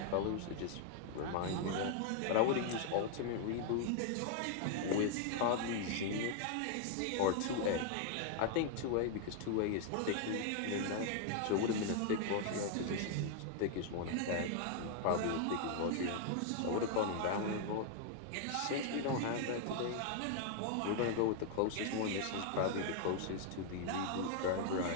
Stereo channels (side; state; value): both; different; correlation 0.00